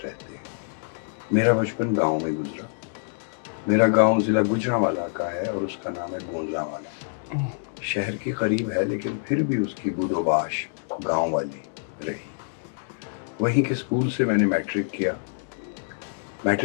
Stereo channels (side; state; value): right; silent; digital silence